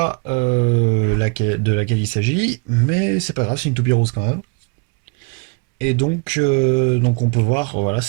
de laquelle il s'agit, mais c'est pas grave, c'est une toupie rose quand même. Et donc on peut voir, voilà,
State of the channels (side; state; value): left; quieter; 32.1 dB